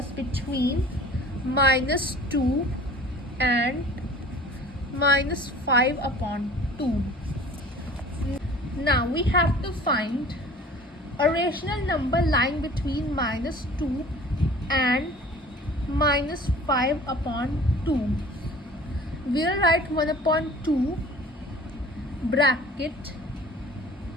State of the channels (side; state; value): both; normal; correlation 0.45